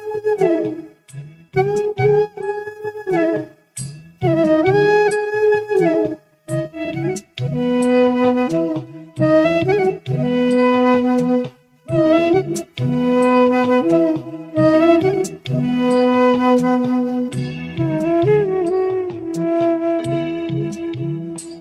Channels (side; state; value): both; identical; correlation 1.00